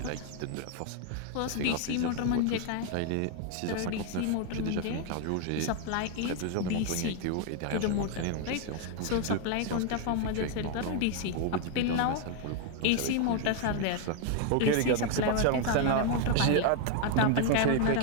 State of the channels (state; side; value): different; both; correlation 0.01